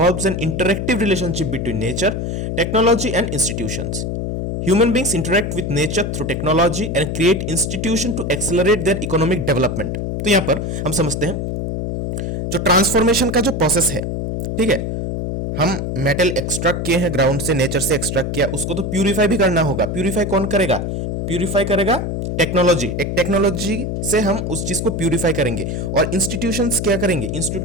an interactive relationship between nature, technology and institutions. Human beings interact with nature through technology and create institution to accelerate their economic development। तो यहां पर हम समझते हैं जो transformation का जो process है, ठीक है, हम मेटल एक्सट्रैक्ट किए हैं ग्राउंड से, नेचर से एक्सट्रैक्ट किया, उसको तो प्यूरिफाई भी करना होगा। प्यूरिफाई कौन करेगा, प्यूरिफाई करेगा टेक्नोलॉजी। एक टेक्नोलॉजी से हम उस चीज को प्यूरिफाई करेंगे। और इंस्टीट्यूशंस क्या करेंगे,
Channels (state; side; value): noise; left; hum, 2 dB below the sound